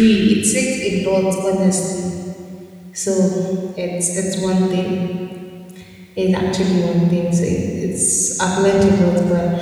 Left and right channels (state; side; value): identical; both; correlation 1.00